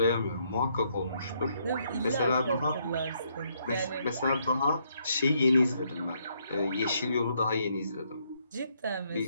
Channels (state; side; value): inverted; both; correlation -0.73